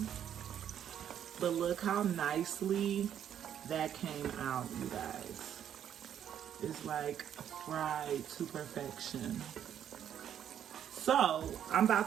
But look how nicely that came out, you guys. It's like fried to perfection. So I'm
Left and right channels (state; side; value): quieter; left; 9.6 dB